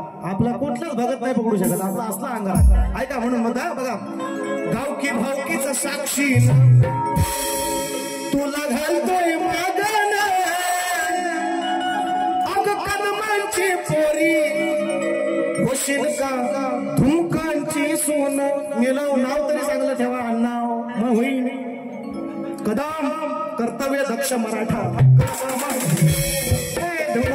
आपला कुठलाच भगत नाही पकडू शकत आपला असला अंगारा. ऐका म्हणून म्हणता बघा गावकी भावकीच साक्षी तुला घालतोय मागण अग कदमांची पोरी होशील का धुमकांची सोन. मिळव नाव तरी चांगलं ठेवा अण्णाव मग होईल. कदम कर्तव्य दक्ष मराठा.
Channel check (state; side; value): identical; both; correlation 1.00